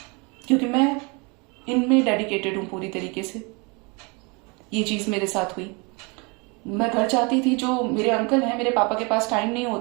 क्योंकि मैं इनमें डेडिकेटेड हूँ पूरी तरीके से। ये चीज मेरे साथ हुई। मैं घर जाती थी, जो मेरे अंकल हैं, मेरे पापा के पास टाइम नहीं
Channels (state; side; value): quieter; left; 30.1 dB